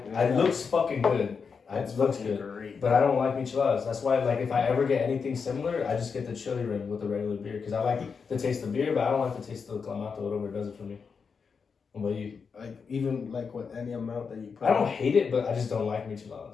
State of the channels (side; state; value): right; quieter; 5.7 dB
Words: looks fucking good. It looks good. great. But I don't like micheladas. That's why, like, if I ever get anything similar, I just get the chili rim with the regular beer because I like the taste of beer, but I don't like the taste of the clamato. Whatever does it for me. What about you? Like even like with any amount that you put. I don't hate it, but I just don't like